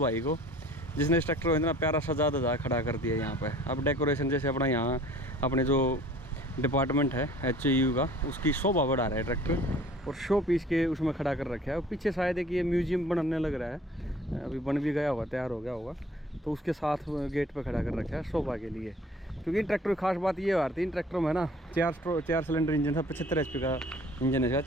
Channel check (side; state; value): both; normal; correlation 0.51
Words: को जिसने इस ट्रैक्टर को इतना प्यारा सजा दजा खड़ा कर दिया यहाँ पे। अब डेकोरेशन जैसे अपना यहाँ अपने जो डिपार्टमेंट है HAU का, उसकी शोभा बढ़ा रहा है ट्रैक्टर, और शो पीस के उसमें खड़ा कर रखा है। और पीछे शायद है कि ये म्यूजियम बनने लग रहा है, अभी बन भी गया होगा, तैयार हो गया होगा, तो उसके साथ गेट पे खड़ा कर रखा है शोभा के लिए। क्योंकि इन ट्रैक्टर की खास बात ये आ रही थी, इन ट्रैक्टरों में ना 4 सिलेंडर इंजन था, 75 HP का इंजन है,